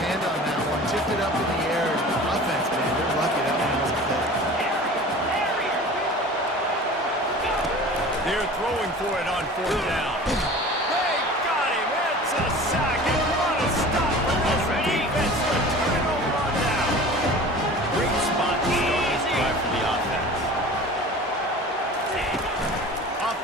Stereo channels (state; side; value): normal; both; correlation 0.40